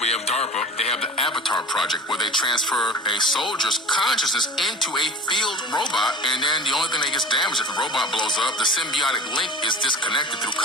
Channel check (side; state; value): both; normal; correlation 0.39